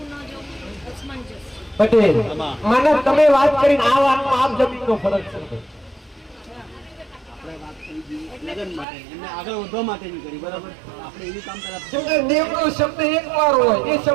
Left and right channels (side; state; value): left; drops out; at 8.8 s